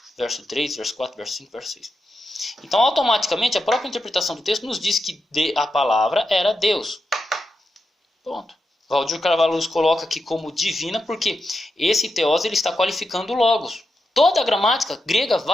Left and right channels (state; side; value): normal; both; correlation 0.87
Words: Verso 3, verso 4, verso 5, verso 6. Então, automaticamente, a própria interpretação do texto nos diz que a palavra era Deus. Ponto. Valdir Carvalho Luz coloca aqui como divina porque esse teós ele está qualificando o logos. Toda a gramática grega